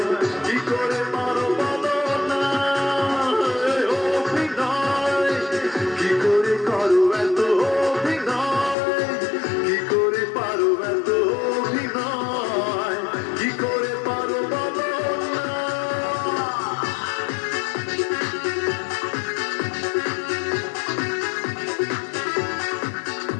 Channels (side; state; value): right; drops out; at 8.8 s